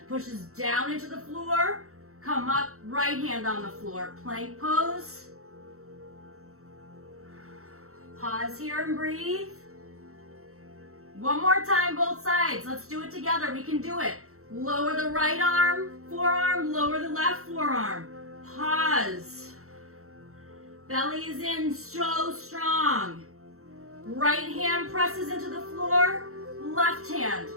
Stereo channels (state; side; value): late; left; 0.63 ms